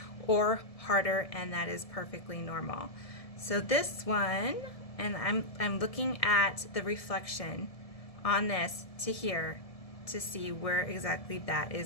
or harder, and that is perfectly normal. So this one, and I'm looking at the reflection on this to here to see where exactly that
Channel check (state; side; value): late; right; 1.7 ms